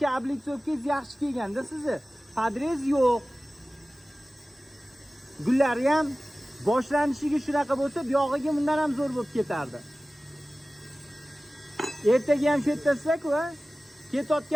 облицовkangiz yaxshi kelganda sizni. Padrez yo'q. Gullari ham boshlanishiga shunaqa bo'lsa, buyog'iga bundan ham zo'r bo'lib ketardi. Ertaga ham shu yertasizlar-ku, ha?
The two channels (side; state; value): both; normal; correlation 0.97